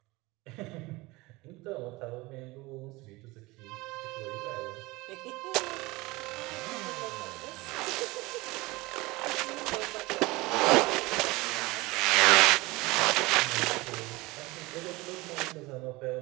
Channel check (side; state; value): left; quieter; 22.1 dB